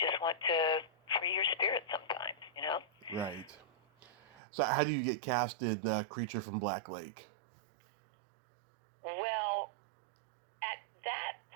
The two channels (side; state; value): left; drops out; at 4.4 s